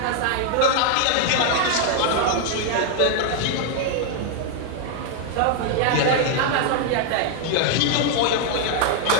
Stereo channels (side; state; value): both; different; correlation 0.00